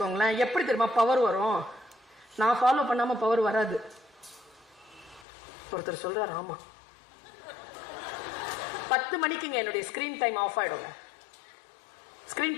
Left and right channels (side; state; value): right; drops out; at 5.2 s